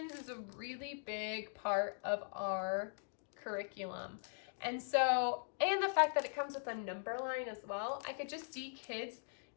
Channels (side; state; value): right; silent; digital silence